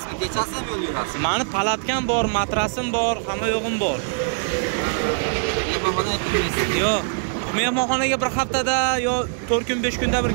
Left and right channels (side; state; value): left; silent; digital silence